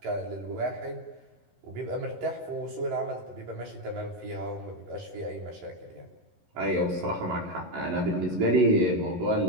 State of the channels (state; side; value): late; left; 11 ms